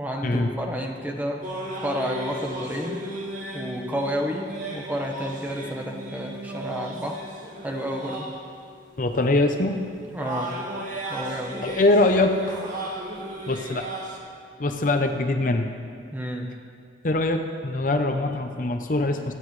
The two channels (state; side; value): normal; both; correlation 0.44